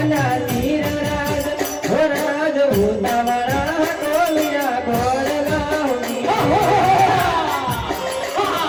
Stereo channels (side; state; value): both; identical; correlation 1.00